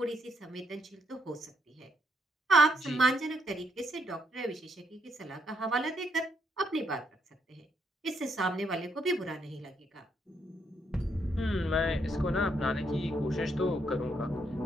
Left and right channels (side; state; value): both; normal; correlation 0.75